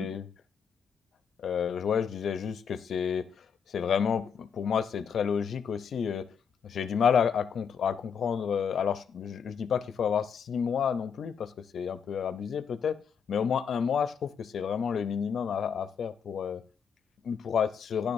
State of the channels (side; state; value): right; quieter; 7.0 dB